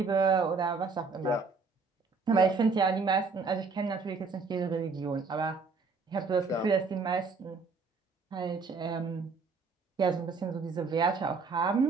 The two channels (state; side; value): quieter; left; 4.5 dB